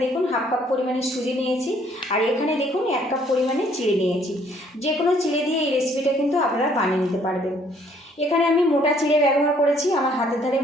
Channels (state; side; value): normal; both; correlation 0.63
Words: দেখুন 1/2 কাপ পরিমাণে সুজি নিয়েছি, আর এখানে দেখুন 1 কাপ পরিমাণে চিড়ে নিয়েছি। যে কোনো চিড়ে দিয়ে এই রেসিপিটা কিন্তু আপনারা বানিয়ে নিতে পারবেন। এখানে আমি মোটা চিড়ে ব্যবহার করেছি, আমার হাতের ধারে